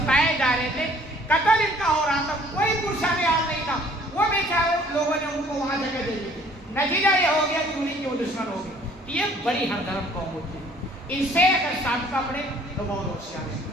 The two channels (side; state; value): both; normal; correlation 0.57